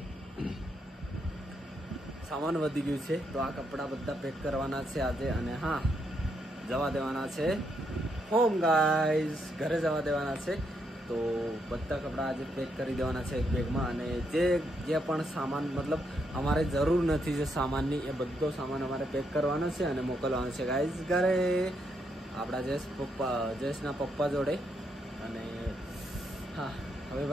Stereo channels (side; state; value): both; normal; correlation 0.78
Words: સામાન વધી ગયું છે તો આ કપડાં બધા પેક કરવાના છે આજે. અને હા, જવા દેવાના છે હોમ ગાઈસ, ઘરે જવા દેવાના છે. તો બધા કપડાં આજે પેક કરી દેવાના છે એક બેગમાં. અને જે પણ સામાન મતલબ અમારે જરૂર નથી જે સામાનની એ બધો સામાન અમારે પેક કરવાનો છે અને મોકલવાનો છે ગાઈસ ઘરે આપણા જયેશના પપ્પા જોડે. અને હા, હવે